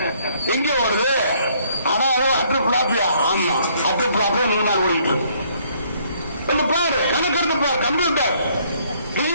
எங்க ஓடுது? ஆனா அட்டு பிளாப்பியா? ஆமா, அட்டு பிளாப்பியா 100 நாள் ஓடிட்டு பாரு. கணக்கெடுத்து பாரு. கம்ப்யூட்டர்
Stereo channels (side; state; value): both; inverted; correlation -0.65